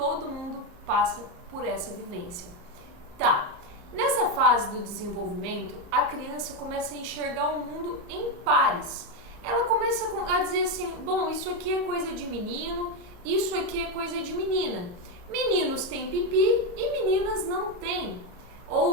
mundo passa por essa vivência. Tá. Nessa fase do desenvolvimento, a criança começa a enxergar o mundo em pares. Ela começa a dizer assim, bom, isso aqui é coisa de menino, isso aqui é coisa de menina. Meninos têm pipi e meninas não têm.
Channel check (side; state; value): left; late; 34 ms